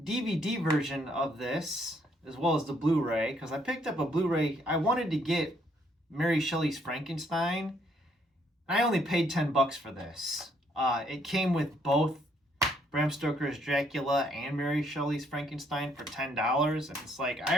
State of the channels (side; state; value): both; normal; correlation 0.69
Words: DVD version of this as well as the Blu-ray because I picked up a Blu-ray. I wanted to get Mary Shelley's Frankenstein. I only paid $10 for this. It came with both Bram Stoker's Dracula and Mary Shelley's Frankenstein for $10. And it's like,